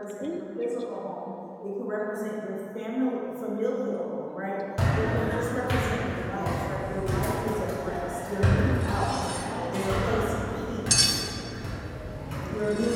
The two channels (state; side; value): identical; both; correlation 1.00